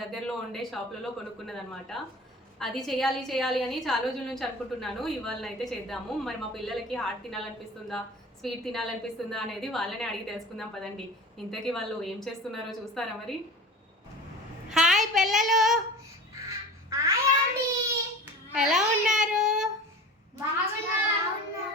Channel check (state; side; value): normal; both; correlation 0.36